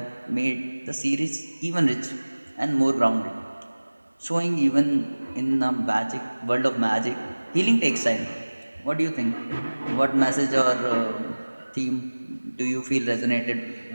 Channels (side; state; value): both; inverted; correlation -1.00